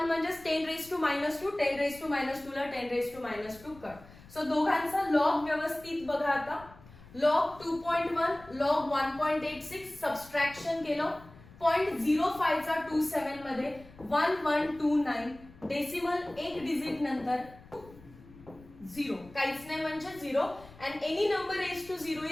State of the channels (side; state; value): left; noise; rumble, 21 dB below the sound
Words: म्हणजे 10 raised to -2, 10 raised to -2 ला 10 raised to -2 कट. सो दोघांचा लॉग व्यवस्थित बघा आता. लॉग 2.1 लॉग 1.86 सबस्ट्रॅक्शन केलं. 0.05 चा 27 मध्ये 1129, डेसिमल एक डिजिट नंतर 0, काहीच नाही म्हणजे 0, and any number raised to 0